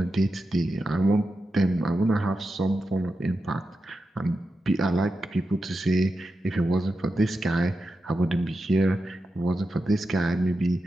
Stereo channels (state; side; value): normal; both; correlation 0.90